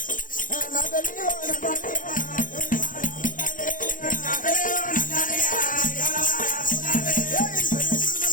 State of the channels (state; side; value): late; right; 0.39 ms